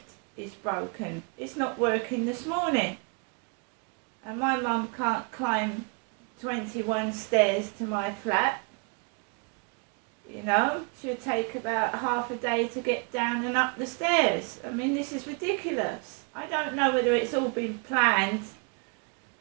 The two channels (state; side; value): quieter; left; 36.1 dB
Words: is broken. It's not working this morning. And my mum can't climb 21 stairs to my flat. You know, she'll take about half a day to get down and up the stairs. I mean, this is ridiculous. I don't know whether it's all been planned,